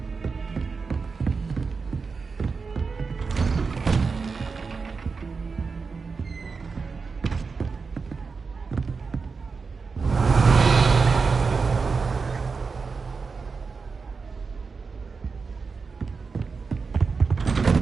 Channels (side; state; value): left; quieter; 4.8 dB